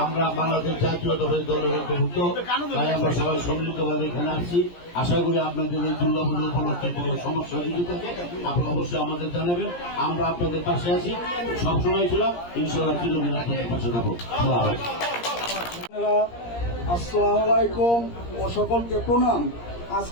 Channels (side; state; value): right; late; 17 ms